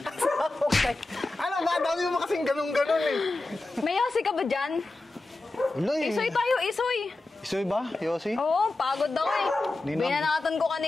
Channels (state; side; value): quieter; right; 3.0 dB